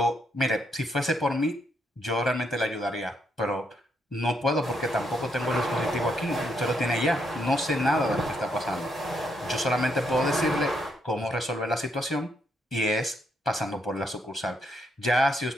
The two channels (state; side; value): normal; both; correlation 0.76